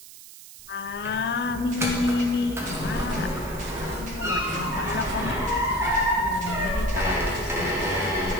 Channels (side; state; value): right; noise; hiss, 17 dB below the sound